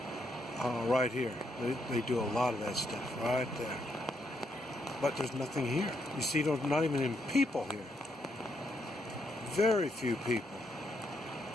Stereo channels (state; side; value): normal; both; correlation 0.77